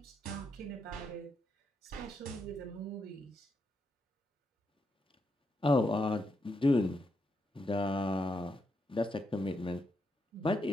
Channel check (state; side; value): normal; both; correlation 0.81